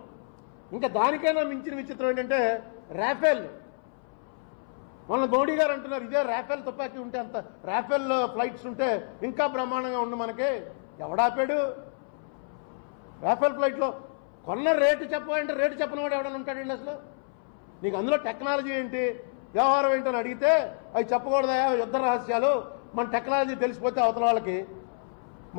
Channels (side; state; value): right; silent; 59 dB below the other